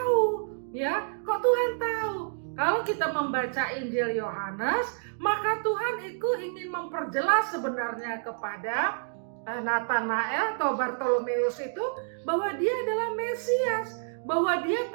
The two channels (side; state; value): left; silent; digital silence